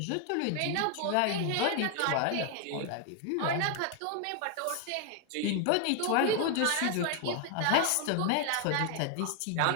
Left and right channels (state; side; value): different; both; correlation 0.01